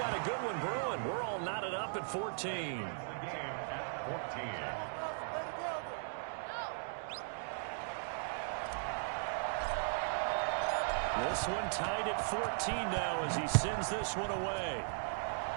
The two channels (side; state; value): left; silent; digital silence